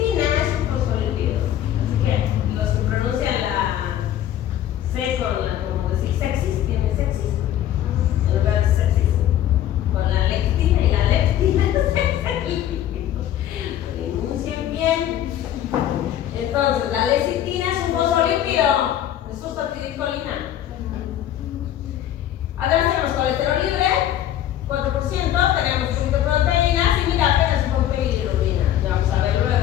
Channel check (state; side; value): quieter; right; 11.6 dB